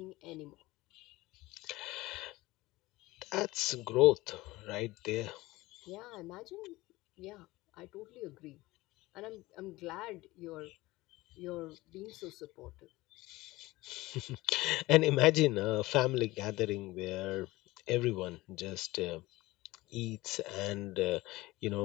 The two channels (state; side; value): quieter; right; 19.5 dB